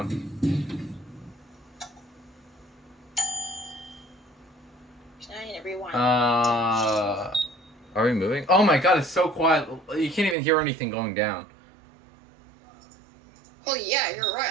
I need to rewind. Are we moving? Oh my god, it's so quiet. You can't even hear anything going down. Oh yeah, you're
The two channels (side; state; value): left; drops out; at 10.4 s